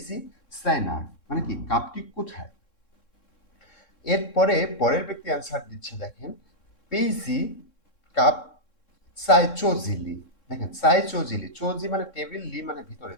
সাইনার মানে কি কাপটি কোথায়। এরপরে পরের ব্যক্তি অ্যান্সার দিচ্ছে দেখেন পেইজি কাপ সাই চোজিলি। দেখেন সাই চোজিলি, চোজি মানে টেবিল, লি মানে ভিতরে,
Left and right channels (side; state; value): right; late; 3.7 ms